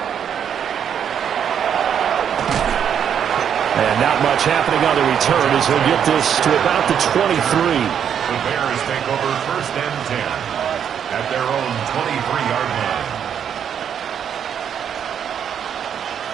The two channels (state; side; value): quieter; left; 8.4 dB